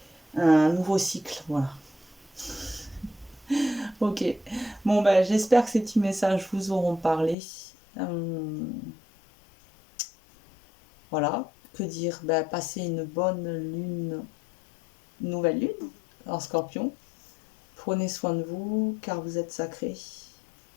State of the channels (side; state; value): right; drops out; at 7.4 s